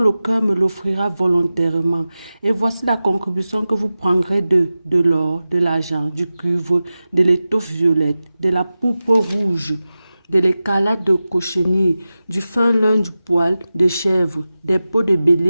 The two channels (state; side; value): inverted; both; correlation -0.95